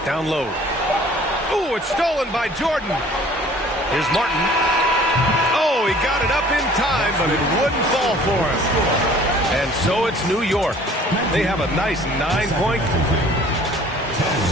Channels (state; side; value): normal; both; correlation 0.52